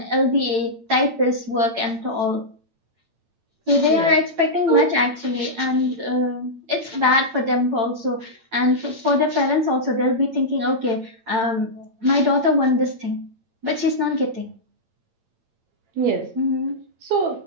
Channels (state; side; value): late; left; 8.8 ms